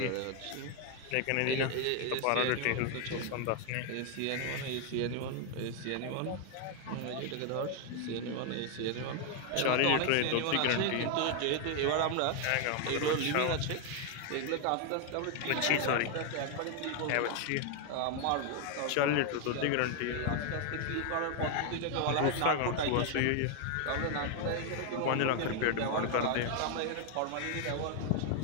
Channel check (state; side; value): different; both; correlation 0.00